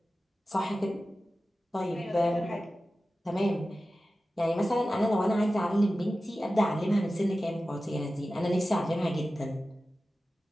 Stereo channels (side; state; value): both; normal; correlation 0.95